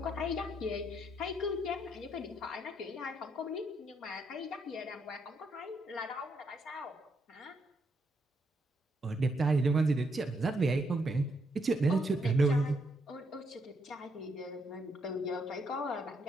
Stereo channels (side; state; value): both; normal; correlation 0.76